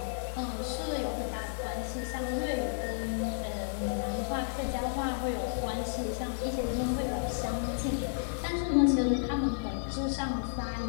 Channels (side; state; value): right; silent; digital silence